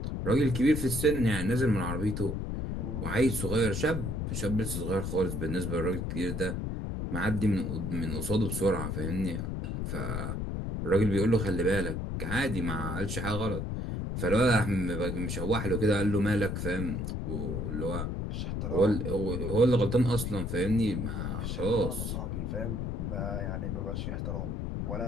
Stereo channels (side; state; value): left; noise; rumble, 3 dB below the sound